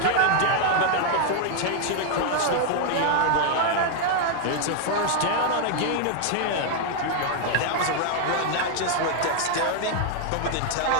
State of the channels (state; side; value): different; both; correlation 0.00